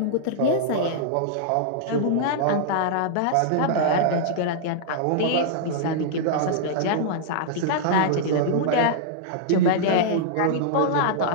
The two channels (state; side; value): different; both; correlation -0.02